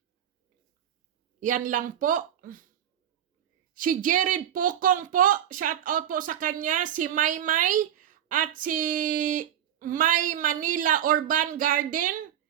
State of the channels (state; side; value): quieter; left; 10.3 dB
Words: Yan lang po. Si Jared Pokong po, shout out po sa kanya. Si Maymay at si May Manila Urban Garden.